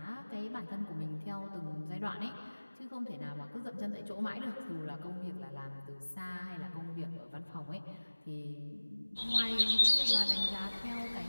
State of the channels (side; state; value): both; inverted; correlation -1.00